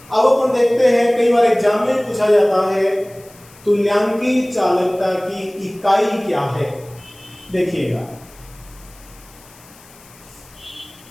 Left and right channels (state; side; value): noise; left; hiss, 24 dB below the sound